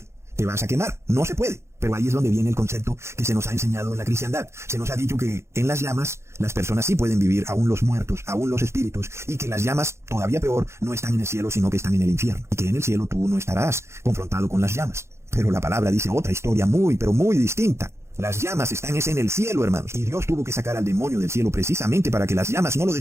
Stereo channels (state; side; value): late; left; 0.13 ms